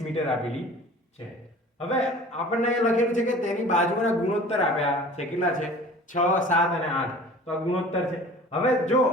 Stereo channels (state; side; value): normal; both; correlation 0.44